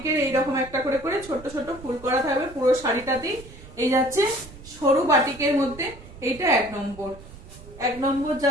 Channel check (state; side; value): noise; right; rumble, 18 dB below the sound